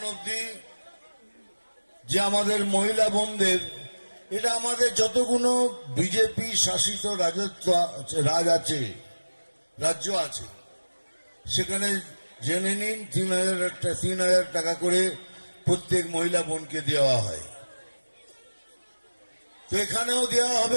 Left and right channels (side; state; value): both; inverted; correlation -1.00